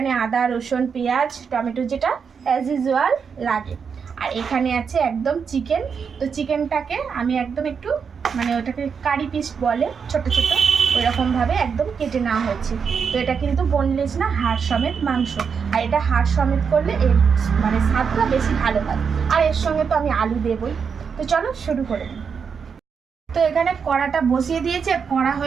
আদা, রসুন, পেঁয়াজ, টমেটো, যেটা অ্যাজ ইউজুয়াল লাগে। আর এখানে আছে একদম চিকেন। তো চিকেনটাকে আমি একদম একটু ওটাকে কারি পিস বলে, ছোট ছোট, ওইরকমভাবে একদম কেটে নেওয়া হয়েছে। তো এটা কিন্তু বোনলেস না, হাড় সমেত মাংস। আর এটা হাড় সমেত করলে এর স্বাদটা বেশি ভালো হয়। আর এর সঙ্গে তো আমি আলু দেবই। তো চলো শুরু করে দিই। তো এখানে কড়াটা বসিয়ে দিয়েছে, কড়া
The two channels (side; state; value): left; quieter; 6.3 dB